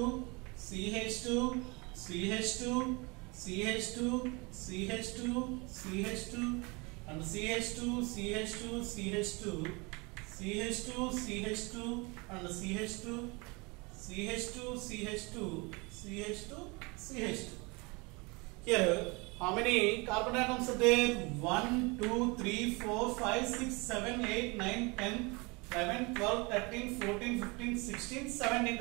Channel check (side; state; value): left; quieter; 27.6 dB